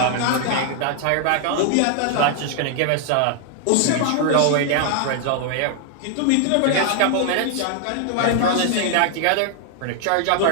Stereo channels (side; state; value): both; different; correlation 0.00